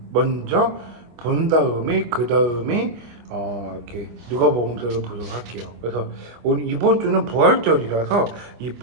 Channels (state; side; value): late; left; 25 ms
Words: 먼저 본 다음에 그 다음에 이렇게 누가복음서를 보도록 할게요. 그래서 오늘 이번 주는 부활절이라서 이